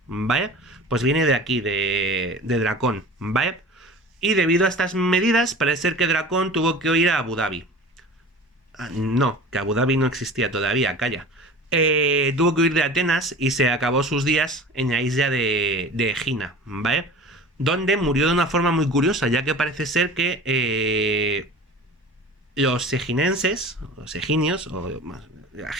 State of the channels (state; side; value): normal; both; correlation 0.39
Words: ¿vale? Pues viene de aquí, de Dracón, ¿vale? Y debido a estas medidas, parece ser que Dracón tuvo que ir a Abu Dhabi. No, que Abu Dhabi no existía todavía, calla. Tuvo que huir de Atenas y se acabó sus días en la isla de Egina, ¿vale? Donde murió de una forma muy curiosa, ya que parece ser que los eginenses, los eginios, o la